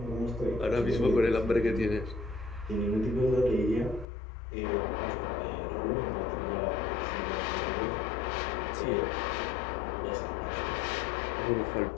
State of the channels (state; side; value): drops out; right; at 4.0 s